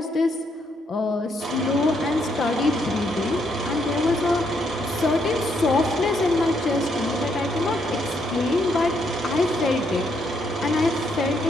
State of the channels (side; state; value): both; normal; correlation 0.74